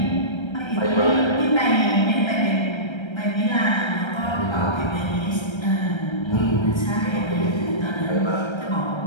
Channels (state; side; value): late; right; 1.3 ms